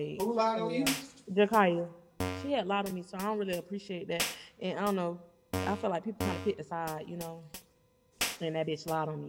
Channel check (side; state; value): both; identical; correlation 1.00